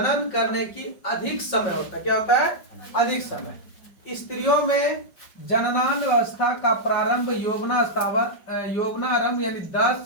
करने की अधिक समय होता है। क्या होता है? अधिक समय। स्त्रियों में जननावस्था का प्रारंभ यौवनारंभ यानी 10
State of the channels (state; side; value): late; right; 5.2 ms